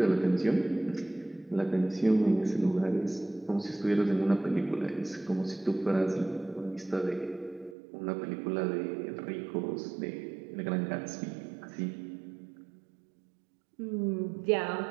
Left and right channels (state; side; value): drops out; left; at 7.8 s